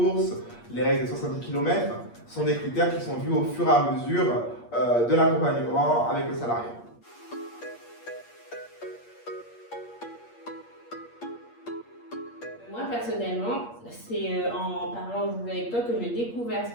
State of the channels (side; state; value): right; late; 8.5 ms